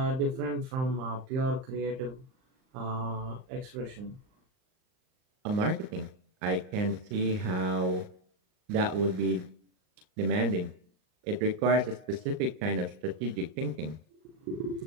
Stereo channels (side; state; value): left; late; 39 ms